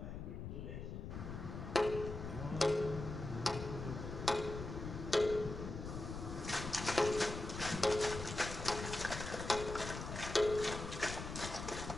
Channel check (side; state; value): left; noise; rumble, 7 dB below the sound